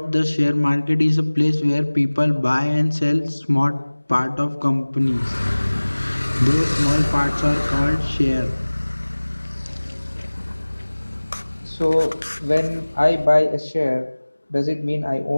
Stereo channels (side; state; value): both; inverted; correlation -1.00